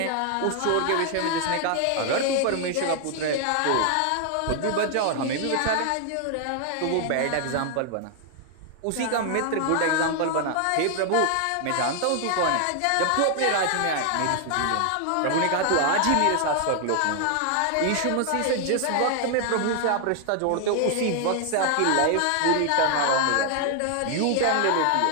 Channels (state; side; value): different; both; correlation 0.00